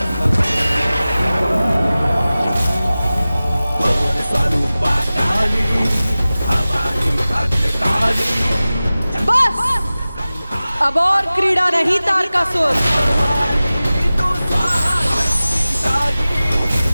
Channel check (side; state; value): both; inverted; correlation -0.97